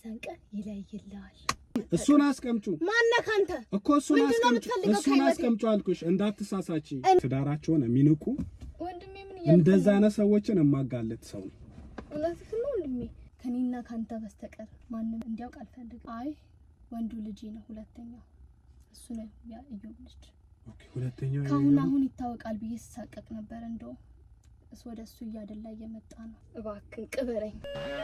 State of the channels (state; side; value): identical; both; correlation 1.00